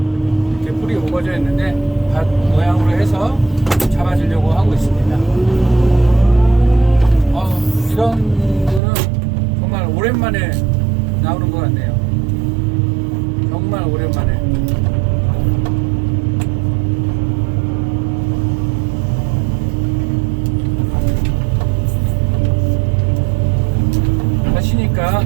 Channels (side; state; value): left; drops out; at 8.8 s